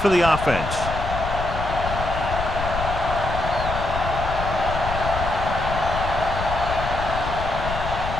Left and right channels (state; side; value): noise; left; rumble, 5 dB below the sound